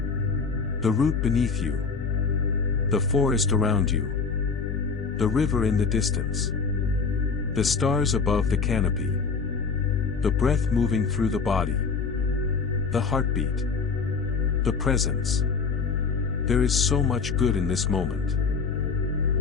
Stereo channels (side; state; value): right; quieter; 5.2 dB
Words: The root beneath you. The forest around you. The river in the distance. The stars above the canopy. The breath moving through the body. The heartbeat. The presence. There is so much good in this